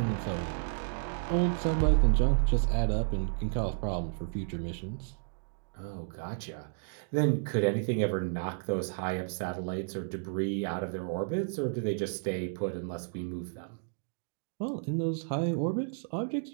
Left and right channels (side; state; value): left; silent; digital silence